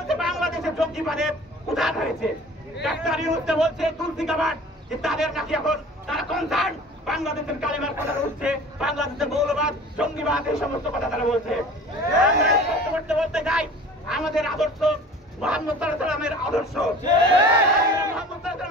বাংলাদেশের জঙ্গিবাদের উদাহরণ হয়েছে। ডাক্তার ইউনূস বলছে তুলসী কাবাট যে তাদের নাকি এখন তারা কনসার্ন বাংলাদেশের কালেমার কথা উঠছে, বাংলাদেশের মৌলবাদ জঙ্গিবাদ এই সমস্ত কথা তারা বলছে। আমরা স্পষ্ট করতে বলতে চাই, আমাদের আদর্শ মুহাম্মদ সাল্লাল্লাহু আলাইহি ওয়াসাল্লামের আদর্শ। মুহাম্মদ সাল্লাল্লাহু আলাইহি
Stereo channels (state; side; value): normal; both; correlation 0.43